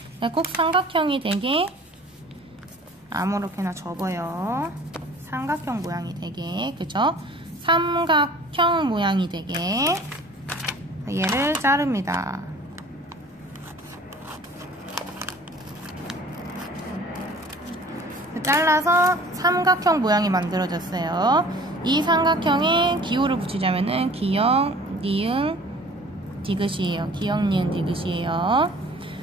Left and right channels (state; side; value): normal; both; correlation 0.48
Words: 꼭 삼각형이 되게 아무렇게나 접어요. 삼각형 모양이 되게, 그죠? 삼각형 모양이 되게 얘를 자릅니다. 잘라서 삼각형 모양이 만들어졌어요. 이 삼각형에 기호를 붙이자면은 기역, 니은, 디귿이에요. 기역, 니은, 디귿이에요.